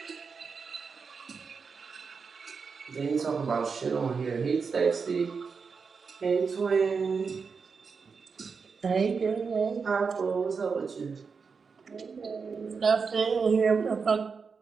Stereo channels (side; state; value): left; quieter; 5.3 dB